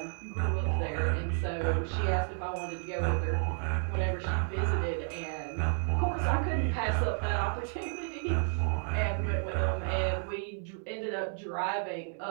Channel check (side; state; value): left; silent; 57 dB below the other